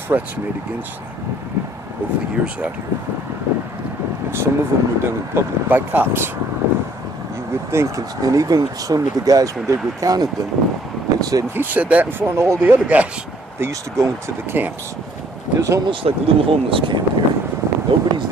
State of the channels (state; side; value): normal; both; correlation 0.61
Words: threats made against them over the years out here. And some of them were done in public by cops. You would think, and even some of the guys, when they recounted them, they said, he said that in front of all the other guys. They used to go into the camps. There's almost like a little homeless camp here. Nobody's